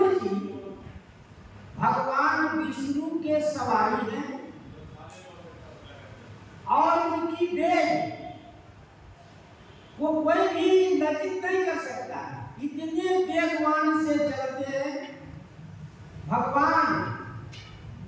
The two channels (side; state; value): both; identical; correlation 1.00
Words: जी भगवान विष्णु के सवारी हैं और उनकी बेज वो कोई भी लज्जित नहीं कर सकता। इतने वेगवान से चलते हैं भगवान।